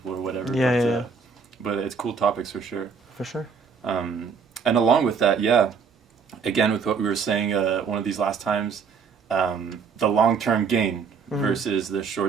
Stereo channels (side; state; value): left; quieter; 5.7 dB